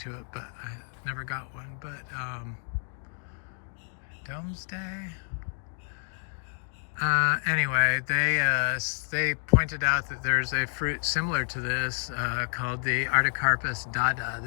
it, but I never got one. But Domesday. Anyway, they pointed out that there's a fruit similar to this called the Artocarpus dada.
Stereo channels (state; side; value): silent; right; 58 dB below the other